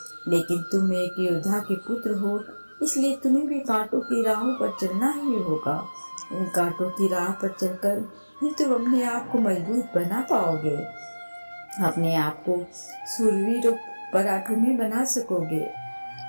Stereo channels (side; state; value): both; inverted; correlation -1.00